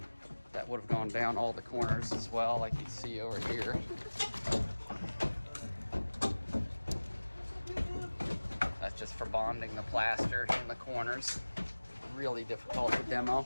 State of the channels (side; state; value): both; inverted; correlation -1.00